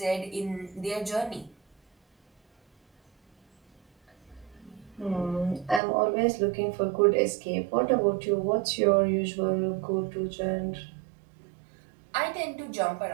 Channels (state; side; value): drops out; left; at 5.8 s